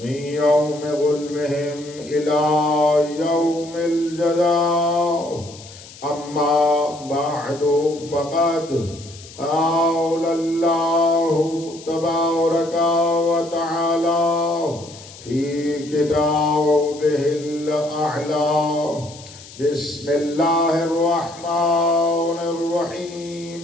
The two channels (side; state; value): left; noise; hiss, 18 dB below the sound